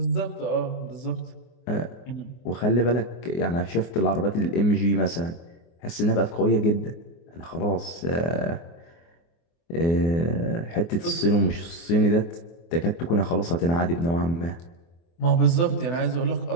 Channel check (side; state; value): right; late; 24 ms